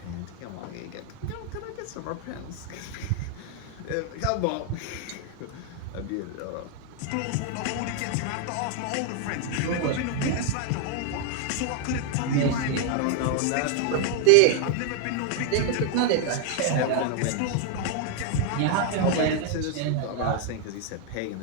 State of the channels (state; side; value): different; both; correlation 0.00